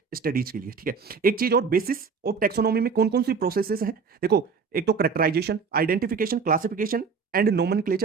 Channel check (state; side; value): quieter; left; 5.5 dB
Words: स्टडीज के लिए। ठीक है, एक चीज और, बेसिस ऑफ टैक्सोनॉमी में कौन कौन सी प्रोसेसेस हैं? देखो, एक तो characterisation, identification, classification and